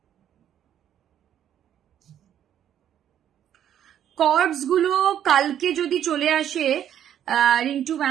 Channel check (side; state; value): left; quieter; 10.3 dB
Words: কর্ডস গুলো কালকে যদি চলে আসে রিন্টু